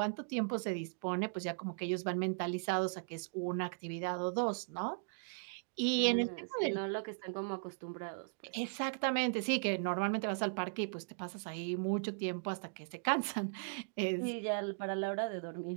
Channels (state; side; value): silent; left; digital silence